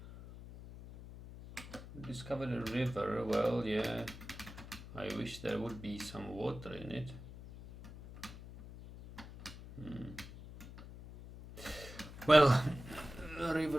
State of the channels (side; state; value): left; noise; hum, 14 dB below the sound